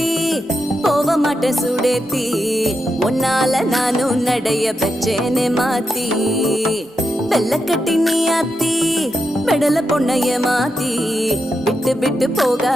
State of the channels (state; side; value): normal; both; correlation 0.86